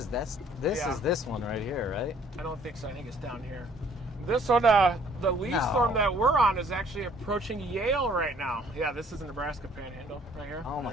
this one right here, right? I don't think so. I think it's down here. This one, the lead storm that we're on is actually approaching Yale right now. Yeah, this is the Nebraska Panhandle right here. Oh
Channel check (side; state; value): both; normal; correlation 0.59